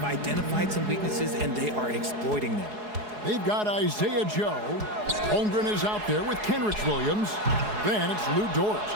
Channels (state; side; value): late; left; 4.7 ms